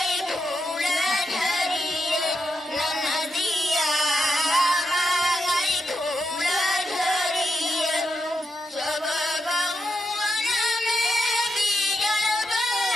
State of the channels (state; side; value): normal; both; correlation 0.84